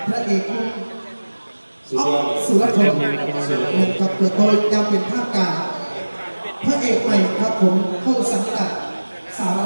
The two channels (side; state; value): both; inverted; correlation -1.00